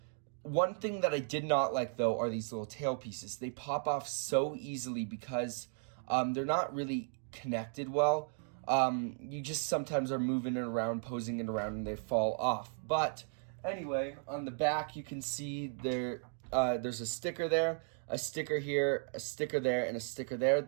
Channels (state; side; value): silent; left; 54 dB below the other